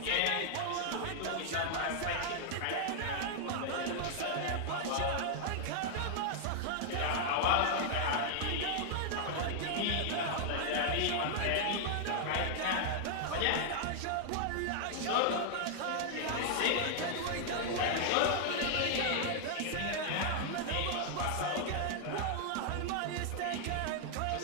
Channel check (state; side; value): different; both; correlation -0.01